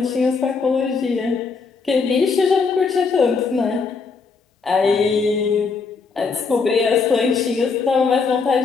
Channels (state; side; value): quieter; right; 4.9 dB